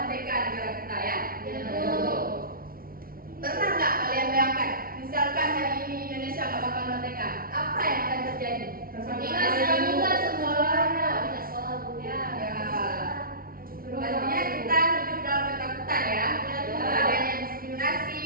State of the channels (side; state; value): left; late; 0.43 ms